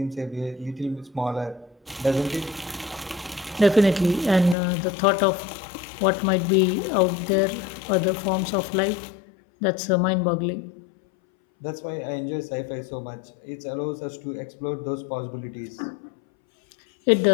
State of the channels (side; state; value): right; drops out; at 4.5 s